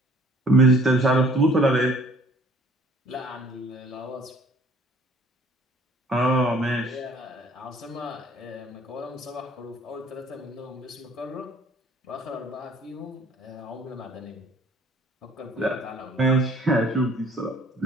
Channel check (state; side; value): normal; both; correlation 0.55